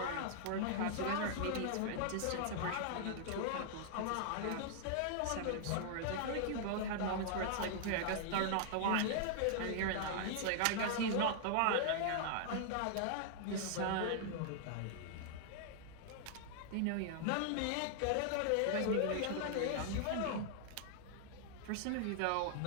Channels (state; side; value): different; both; correlation -0.01